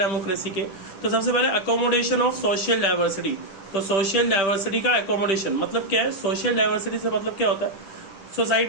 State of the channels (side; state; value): right; late; 10 ms